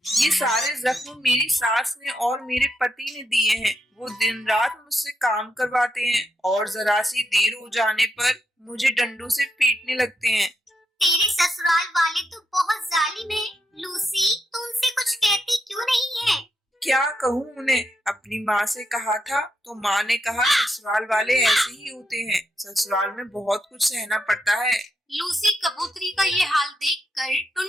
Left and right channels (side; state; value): both; normal; correlation 0.82